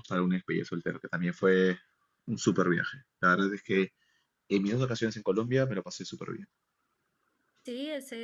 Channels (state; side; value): identical; both; correlation 1.00